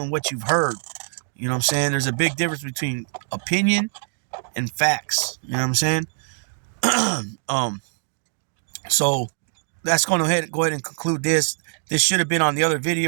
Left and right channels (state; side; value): silent; left; digital silence